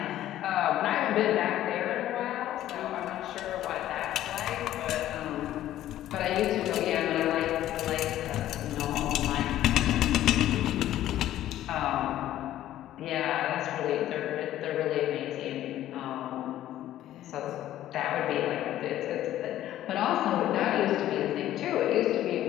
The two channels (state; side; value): quieter; right; 13.1 dB